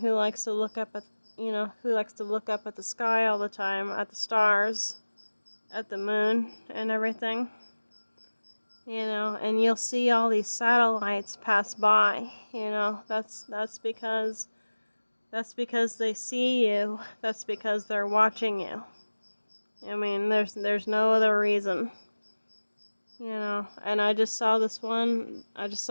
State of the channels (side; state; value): both; inverted; correlation -1.00